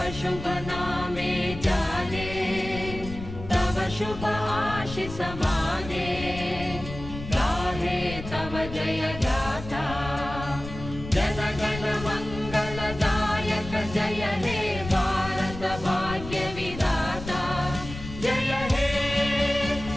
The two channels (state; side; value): noise; left; rumble, 11 dB below the sound